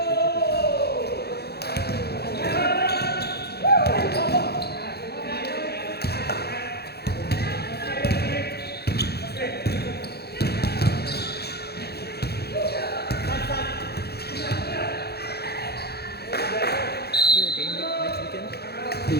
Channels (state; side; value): late; right; 0.47 ms